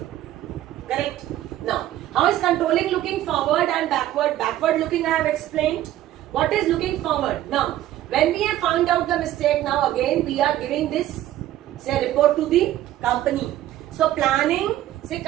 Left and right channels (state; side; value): quieter; left; 13.5 dB